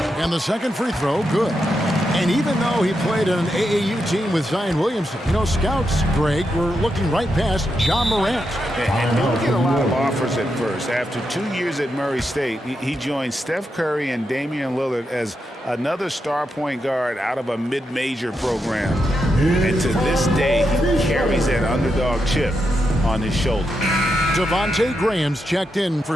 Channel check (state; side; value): normal; both; correlation 0.85